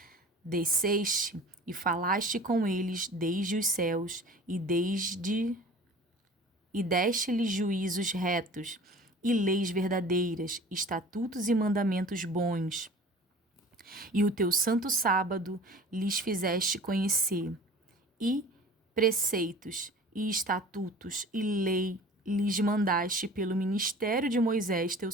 desceste e falaste com eles desde os céus, e deste-lhes juízos retos, e leis verdadeiras, estatutos e mandamentos bons. E o teu santo sábado lhes fizeste conhecer, e preceitos, e estatutos, e lei lhes mandaste pelo ministério de Moisés teu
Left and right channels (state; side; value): normal; both; correlation 0.43